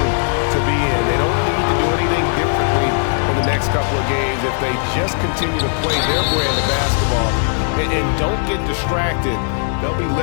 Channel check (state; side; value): silent; right; digital silence